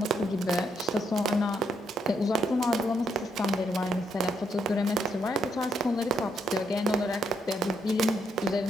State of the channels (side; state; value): both; normal; correlation 0.76